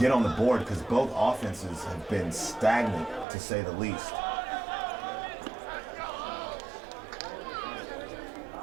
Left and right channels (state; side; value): drops out; left; at 3.2 s